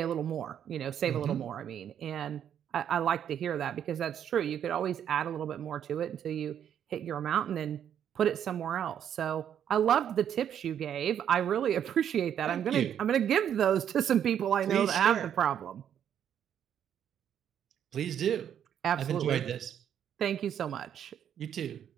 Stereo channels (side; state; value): left; quieter; 9.3 dB